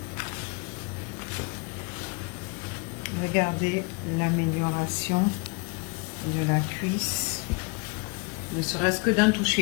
Regardez l'amélioration de la cuisse, ne serait-ce que d'un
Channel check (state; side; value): quieter; right; 30.8 dB